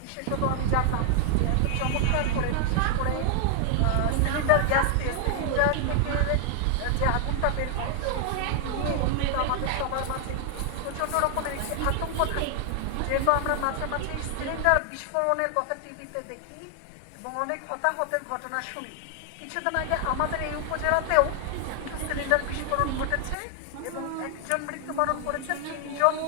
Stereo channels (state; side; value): different; both; correlation 0.00